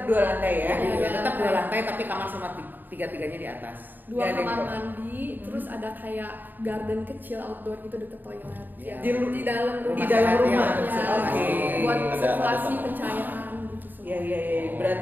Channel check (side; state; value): left; late; 0.089 ms